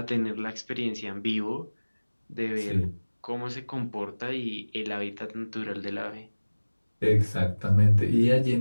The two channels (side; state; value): both; inverted; correlation -1.00